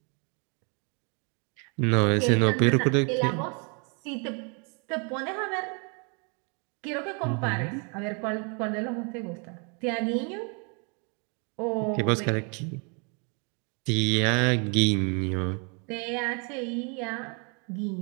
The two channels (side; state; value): left; quieter; 35.5 dB